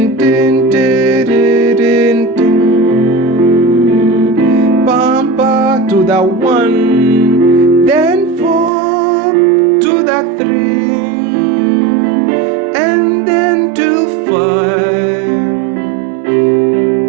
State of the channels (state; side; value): drops out; left; at 8.7 s